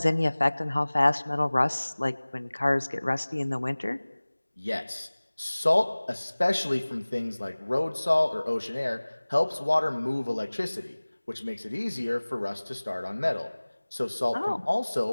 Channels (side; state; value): both; inverted; correlation -1.00